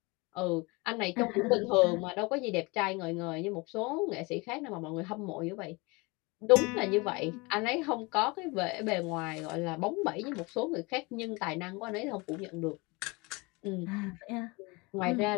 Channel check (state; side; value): quieter; right; 26.3 dB